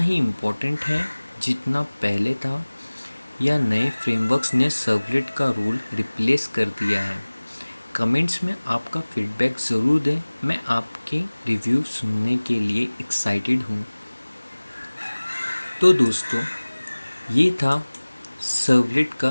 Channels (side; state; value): both; inverted; correlation -1.00